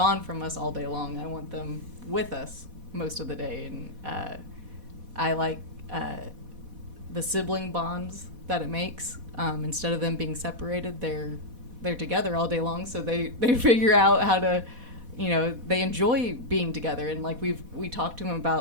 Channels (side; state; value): left; late; 4.1 ms